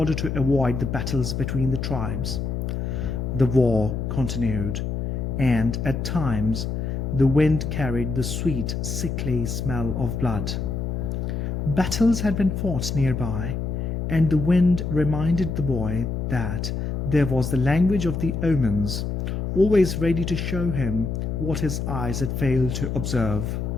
to avoid the battles between the tribes. The war continued, and at times the wind carried the sweet, sickly smell of blood. Battles had been fought nearby, and the wind reminded the boy that there was the language of the omens, always ready to show him what his eyes had failed to observe.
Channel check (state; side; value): noise; left; hum, 2 dB below the sound